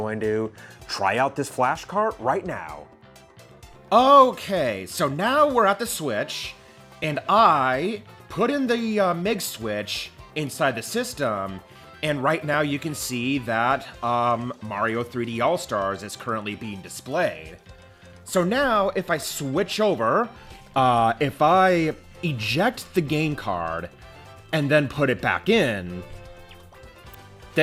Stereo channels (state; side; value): identical; both; correlation 1.00